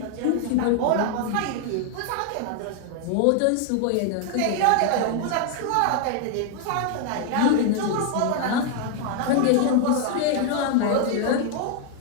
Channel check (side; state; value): both; different; correlation 0.00